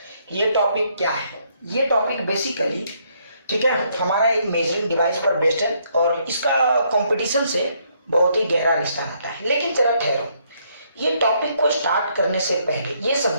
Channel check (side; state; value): both; inverted; correlation -0.71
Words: ये टॉपिक क्या है। ये टॉपिक बेसिकली ठीक है हमारा एक मेजरिंग डिवाइस पर बेस्ड है और इसका कंपटीशन से बहुत ही गहरा रिश्ता नाता है। लेकिन जरा ठहरो, ये टॉपिक को स्टार्ट करने से पहले ये